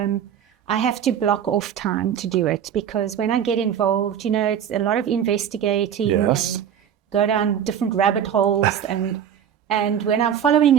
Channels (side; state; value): left; quieter; 9.0 dB